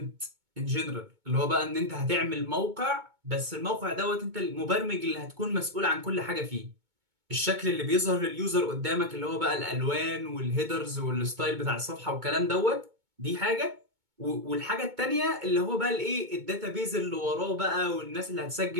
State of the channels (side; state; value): left; late; 2.2 ms